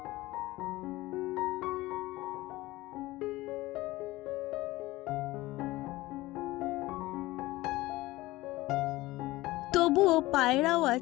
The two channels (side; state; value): right; quieter; 18.8 dB